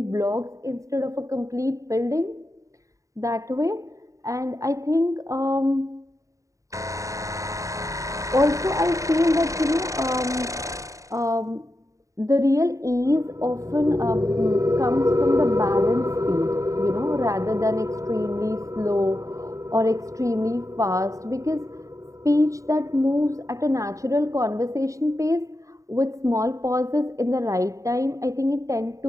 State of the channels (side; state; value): left; late; 0.16 ms